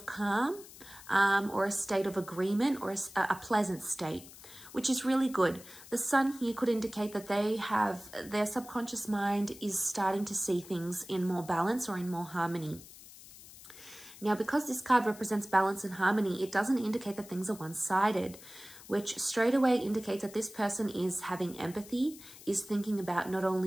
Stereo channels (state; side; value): noise; left; hiss, 18 dB below the sound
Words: calm or a state of agreement or a pleasant state, which is really good. The Sun here could indicate that their subconscious mind is starting to see things in more balance or in more harmony. Now, because this card represents balance and harmony, it doesn't indicate that things are one-sided, which straight away indicates that this person is having empathy, is thinking about not